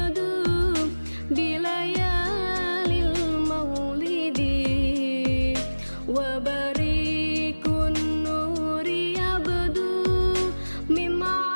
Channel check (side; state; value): both; inverted; correlation -1.00